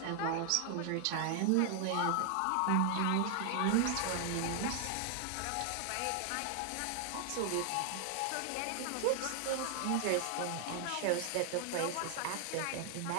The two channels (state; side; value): different; both; correlation 0.00